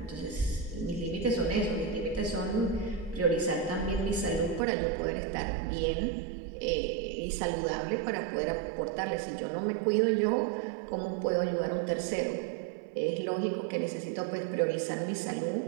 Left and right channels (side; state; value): left; drops out; at 4.6 s